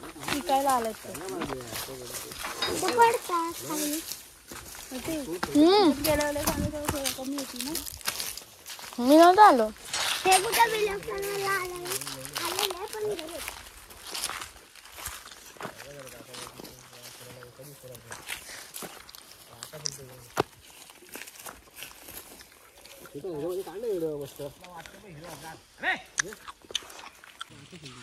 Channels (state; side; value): identical; both; correlation 1.00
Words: शिकायला आलं पडतात. मी नव्हतं आलो. हे कुठं बिलकुल आले पण